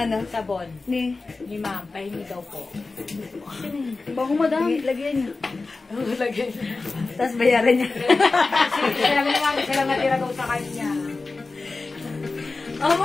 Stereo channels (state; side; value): quieter; right; 3.7 dB